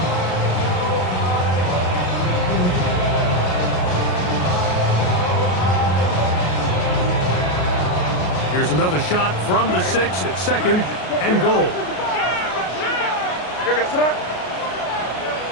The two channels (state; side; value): late; right; 33 ms